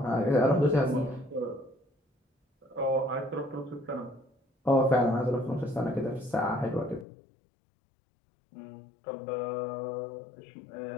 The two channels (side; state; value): right; drops out; at 7.1 s